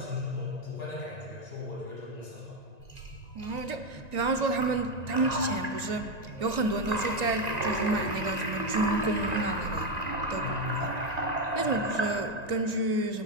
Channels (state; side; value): late; left; 1.9 ms